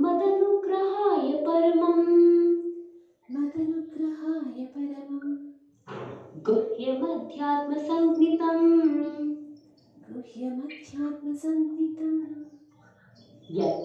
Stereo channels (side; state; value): both; identical; correlation 1.00